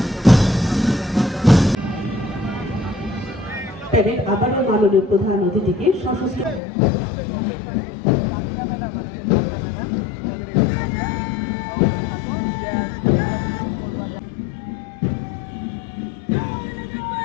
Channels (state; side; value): drops out; right; at 6.6 s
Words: আবারও মাননীয় প্রধান অতিথিকে সশস্ত্র